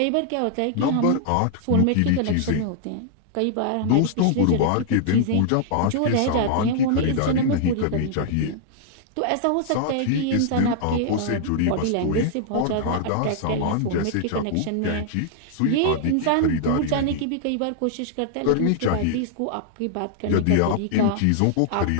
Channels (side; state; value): both; different; correlation -0.01